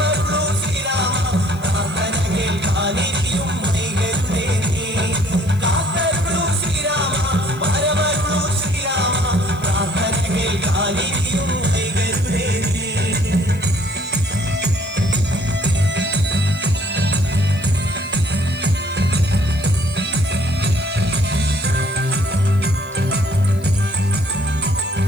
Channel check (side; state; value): left; noise; hiss, 24 dB below the sound